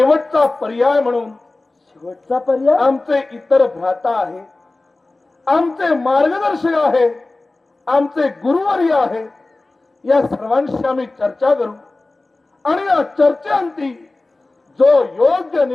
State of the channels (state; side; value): quieter; right; 3.1 dB